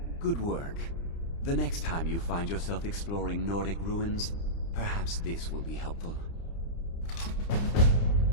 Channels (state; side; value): late; right; 30 ms